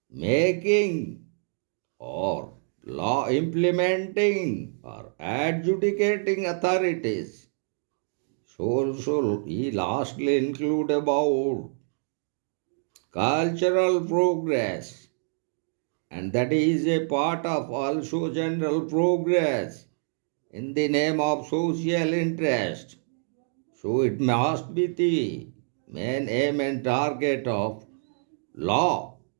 making or law implementing or adjudicating authorities. So he lastly include about cultural progress, and that is a part of also general progress in the name of social interest. So it must be the main aim and target of law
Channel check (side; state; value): left; silent; digital silence